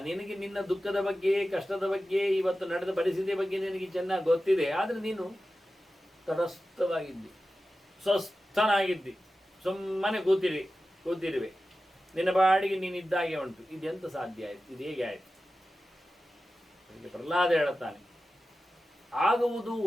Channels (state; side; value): normal; both; correlation 0.94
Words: ನಿನಗೆ ನಿನ್ನ ದುಃಖದ ಬಗ್ಗೆ, ಕಷ್ಟದ ಬಗ್ಗೆ, ಇವತ್ತು ನಡೆದ ಪರಿಸ್ಥಿತಿಯ ಬಗ್ಗೆ ನಿನಗೆ ಚೆನ್ನಾಗಿ ಗೊತ್ತಿದೆ. ಆದರೆ ನೀನು ತಟಸ್ಥವಾಗಿದ್ದಿ, ಸ್ವಸ್ಥನಾಗಿದ್ದಿ, ಸುಮ್ಮನೆ ಕೂತಿರುವೆ, ನಿನ್ನ ಬಾಡಿಗೆ ನೀನಿದ್ದಾಗೆ ಉಂಟು. ಇದೆಂತ ಸಾಧ್ಯ ಆಯಿತು? ಇದು ಹೇಗೆ ಆಯಿತು? ಪ್ರಹ್ಲಾದ ಹೇಳುತ್ತಾನೆ, ಆಗುವುದು